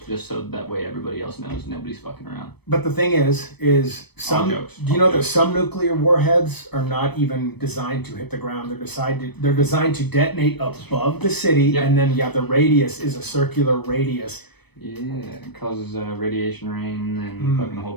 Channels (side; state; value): right; late; 0.98 ms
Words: just so that way everybody else knows nobody's fucking around. But the thing is some. All jokes. Do you know that some nuclear warheads are not even designed to hit the ground? They're designed to detonate above the city, Yep. and then the radius is a circular radius. Yeah, it causes radiation rain and fucking a whole